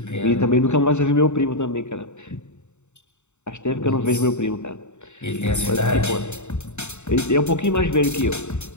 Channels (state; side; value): late; right; 0.83 ms